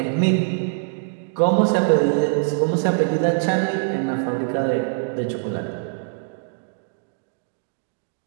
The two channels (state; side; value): silent; left; digital silence